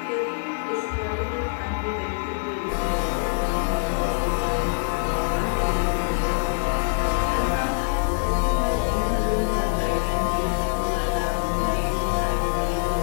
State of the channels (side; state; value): right; silent; digital silence